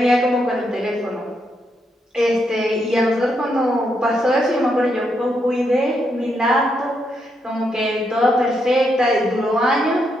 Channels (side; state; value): both; normal; correlation 0.79